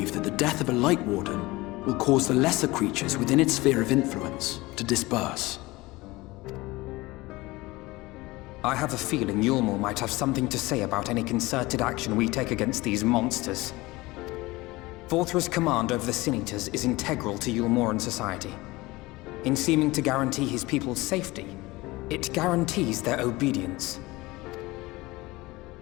that the death of a Light Warden will cause the lesser creatures within its sphere of influence to disperse. I have a feeling Yulmor might have something to say about any concerted action we take against these monsters. Vorthra's command over the Sin Eaters is integral to Yulmoran society. In seeming to guarantee his people's safety, it guarantees their obedience.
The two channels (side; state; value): right; quieter; 21.0 dB